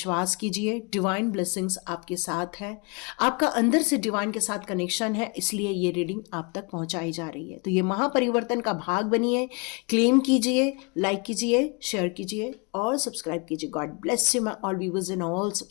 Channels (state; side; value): quieter; right; 32.2 dB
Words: कीजिए। डिवाइन ब्लेसिंग्स आपके साथ है, आपका अंदर से डिवाइन के साथ कनेक्शन है, इसलिए ये रीडिंग आप तक पहुंचाई जा रही है। तो ये महापरिवर्तन का भाग बनिए, क्लेम कीजिए, लाइक कीजिए, शेयर कीजिए और सब्सक्राइब कीजिए। God bless you my all viewers and all